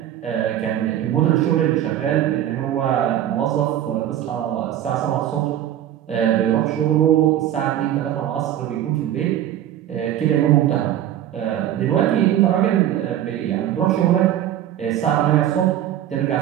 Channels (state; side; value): quieter; left; 11.6 dB